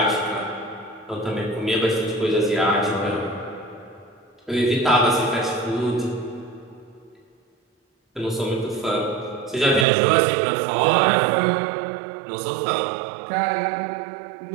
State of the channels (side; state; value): left; drops out; at 9.9 s